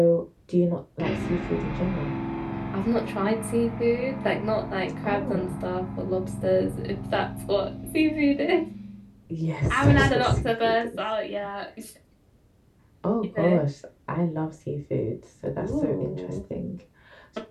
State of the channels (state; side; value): identical; both; correlation 1.00